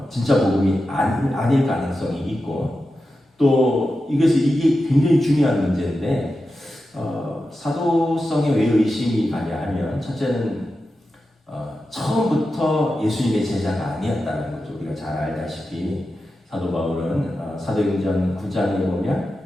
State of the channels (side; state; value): both; normal; correlation 0.91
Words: 진짜 복음이 아닐 가능성이 있고, 또 이게 굉장히 중요한 문제인데 사도성에 왜 의심이 가냐 하면 첫째는 처음부터 예수님의 제자가 아니었다는 거죠. 우리가 잘 알다시피 사도 바울은 사도행전 9장에 보면